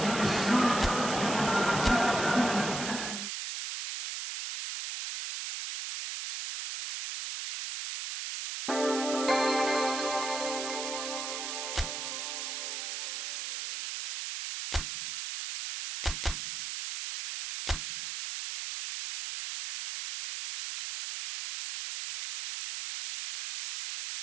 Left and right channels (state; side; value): noise; right; hiss, 5 dB below the sound